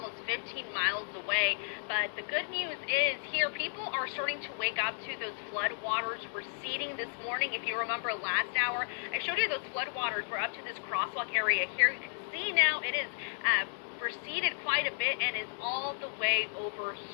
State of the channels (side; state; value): right; silent; digital silence